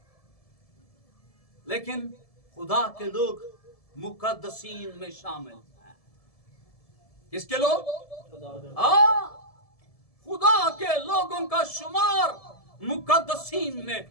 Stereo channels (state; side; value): late; right; 1.7 ms